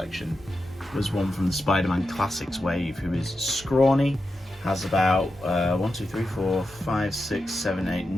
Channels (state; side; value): normal; both; correlation 0.89